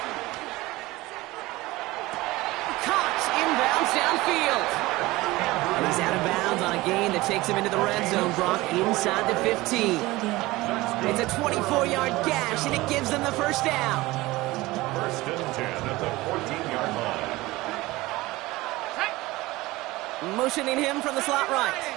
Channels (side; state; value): left; quieter; 19.7 dB